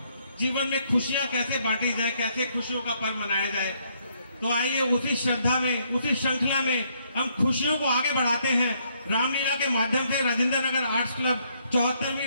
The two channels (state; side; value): inverted; both; correlation -0.71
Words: जीवन में खुशियां कैसे बांटी जाए, कैसे खुशियों का पर्व मनाया जाए। तो आइए उसी श्रद्धा में, उसी श्रृंखला में हम खुशियों को आगे बढ़ाते हैं। रामलीला के माध्यम से राजेंद्र नगर आर्ट्स क्लब